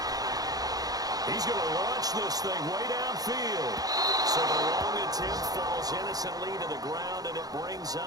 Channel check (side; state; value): left; late; 0.18 ms